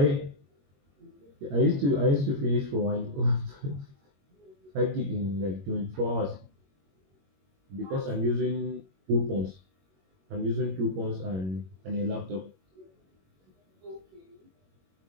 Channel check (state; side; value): late; left; 21 ms